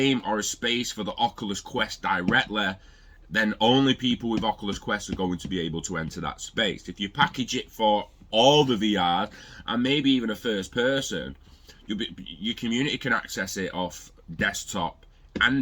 or a space for the Oculus Quest directly, then only people with Oculus Quest are going to be able to enter that space. If you package it for all the VR and maybe even a first person, your community can access it off desktop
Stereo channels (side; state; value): both; identical; correlation 1.00